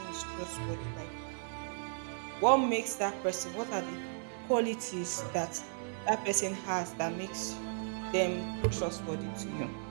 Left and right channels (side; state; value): left; silent; 54 dB below the other